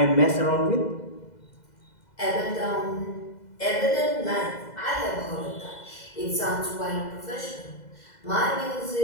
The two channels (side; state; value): right; late; 2.0 ms